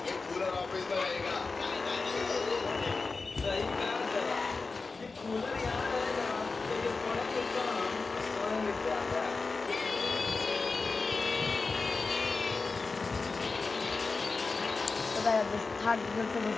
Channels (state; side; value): quieter; right; 4.1 dB